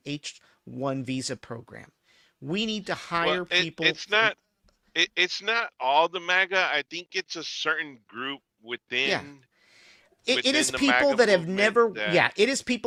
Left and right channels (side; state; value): both; identical; correlation 1.00